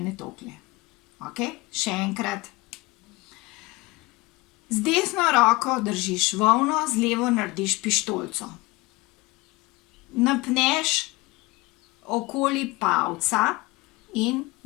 tolikle. Okej, še enkrat. Z desno roko držiš volno, z levo narediš pištolico. Napneš okoli palca in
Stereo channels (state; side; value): quieter; right; 22.3 dB